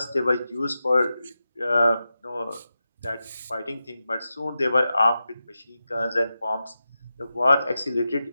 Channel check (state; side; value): inverted; both; correlation -0.91